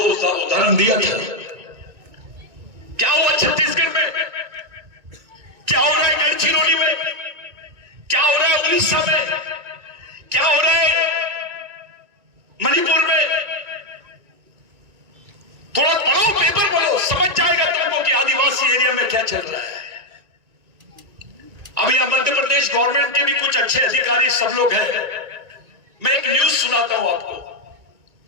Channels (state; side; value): late; left; 2.2 ms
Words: उदाहरण दिया था। क्या हुआ छत्तीसगढ़ में, क्या हो रहा है गढ़चिरौली में, क्या हो रहा है उड़ीसा में, क्या हो रहा है मणिपुर में? थोड़ा पढ़ो, पेपर पढ़ो, समझ जाएगा तुमको कि आदिवासी एरिया में क्या चल रहा है। अभी यहां मध्य प्रदेश गवर्नमेंट के भी कुछ अच्छे अधिकारी सब लोग हैं। मैं एक न्यूज सुनाता हूं आपको।